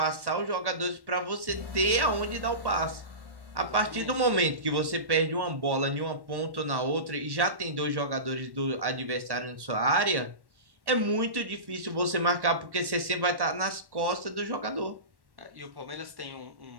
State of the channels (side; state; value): left; late; 1.1 ms